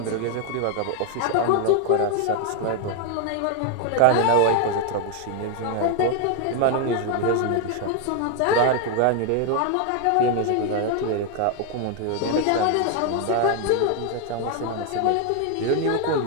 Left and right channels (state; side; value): different; both; correlation 0.00